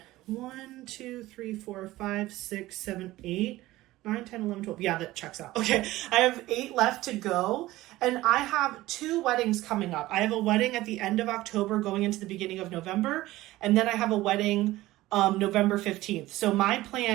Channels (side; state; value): left; quieter; 17.2 dB